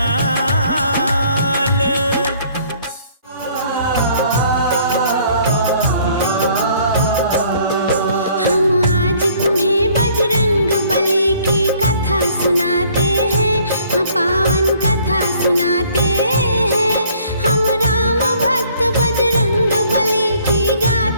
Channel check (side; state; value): both; inverted; correlation -0.59